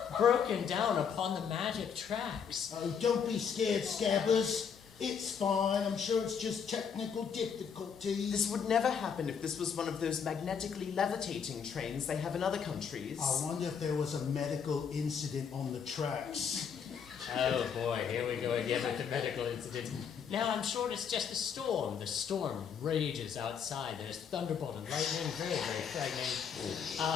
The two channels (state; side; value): quieter; right; 7.0 dB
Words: broken down upon the magic tracks. Oh, don't be scared, Scabbers. It's fine. I'm sure it's just technical difficulties. This would never happen if this was one of those magnetically levitating trains they have in other countries. I wonder if there was a medical incident on the tracks. Oh boy, here we go again with the medical incident. Now I'm sure it's just a storm. The storm rages outside. There's thunderbolt and lightning, very, very frightening.